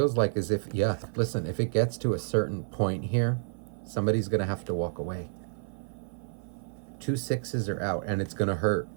like is if, yeah, listen, if it gets to a certain point here, somebody's going to have to walk away. 2 sixes are out, and it's going to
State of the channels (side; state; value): left; silent; 55 dB below the other